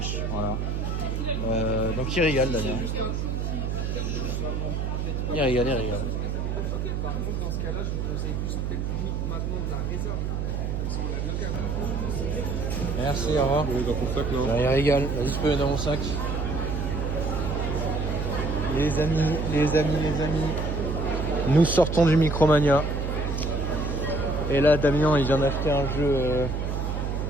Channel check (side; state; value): right; noise; hum, 1 dB below the sound